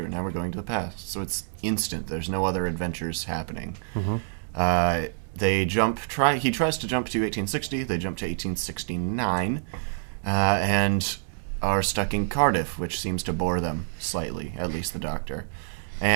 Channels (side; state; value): left; silent; 60 dB below the other